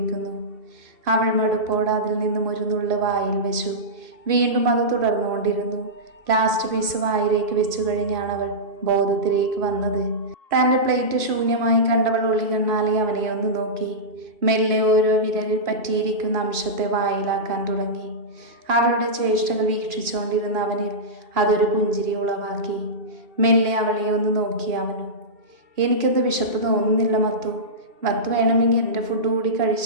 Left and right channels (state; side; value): late; left; 2.7 ms